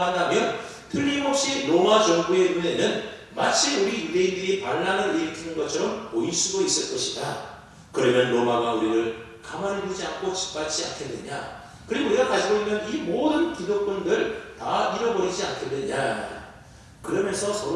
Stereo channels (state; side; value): identical; both; correlation 1.00